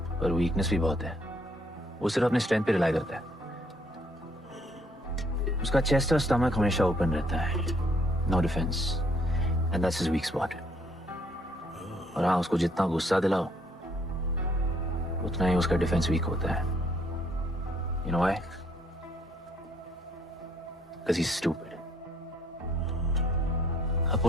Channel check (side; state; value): both; normal; correlation 0.66